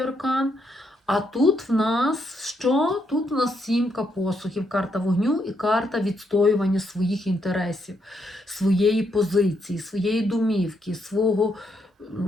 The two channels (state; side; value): normal; both; correlation 0.77